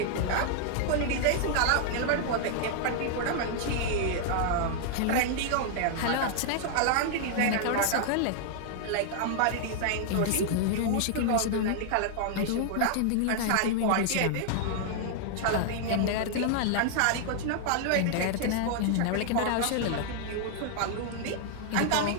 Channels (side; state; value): both; different; correlation -0.01